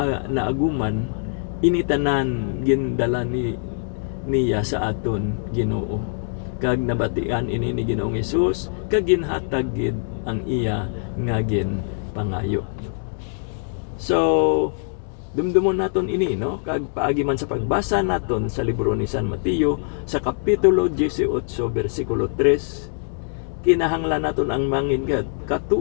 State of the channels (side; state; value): right; silent; digital silence